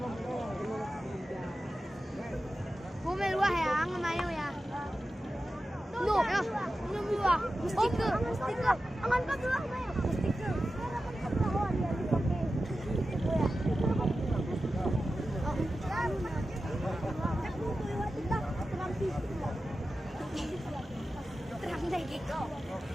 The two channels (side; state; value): both; normal; correlation 0.93